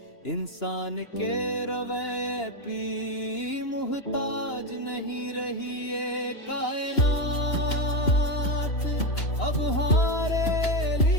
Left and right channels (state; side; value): late; right; 2.9 ms